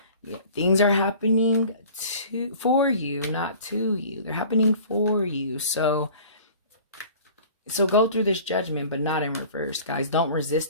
Yeah, things are happening for you, not to you. They're happening for you. So go through this Judgment, but not in reverse, guys. Don't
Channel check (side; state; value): both; inverted; correlation -0.45